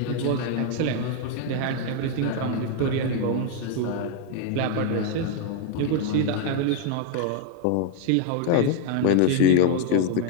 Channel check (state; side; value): different; both; correlation 0.00